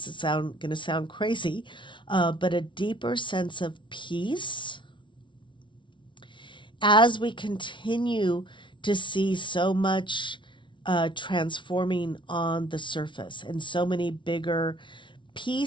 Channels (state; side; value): late; right; 0.24 ms